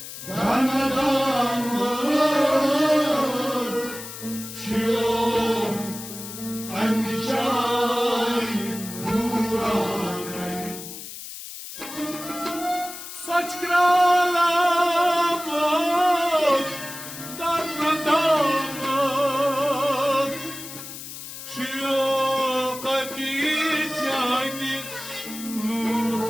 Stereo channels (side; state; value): left; noise; hiss, 11 dB below the sound